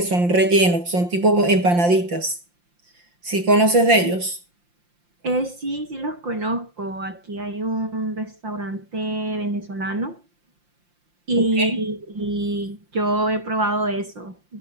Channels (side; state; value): left; late; 5.7 ms